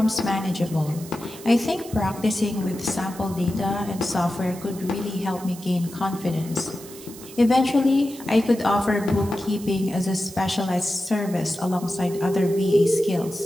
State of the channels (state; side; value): noise; right; hiss, 17 dB below the sound